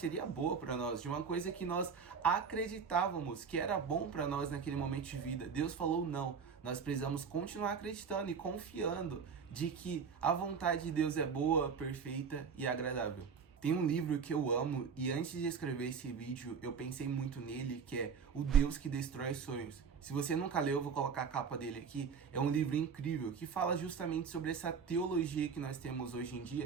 boa para nós, de uma coisa que nós acreditávamos que era bom para nós naquele momento de vida, Deus falou não. Nós precisamos continuar acreditando e confiando de que a vontade de Deus é boa, perfeita e agradável. Tem um livro que eu amo e antes de escrever esse vídeo eu pensei muito nele, que é O Deus que Destrói Sonhos. Se você nunca leu, eu vou colocar a capa dele aqui. É um livro incrível que fala justamente sobre essa teologia que nós temos hoje em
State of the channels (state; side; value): quieter; left; 6.1 dB